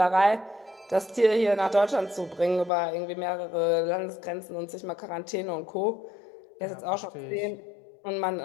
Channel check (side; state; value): right; drops out; at 2.7 s